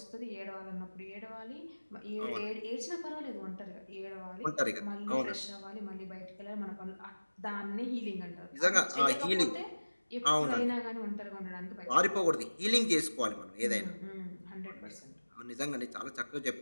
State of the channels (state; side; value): inverted; both; correlation -1.00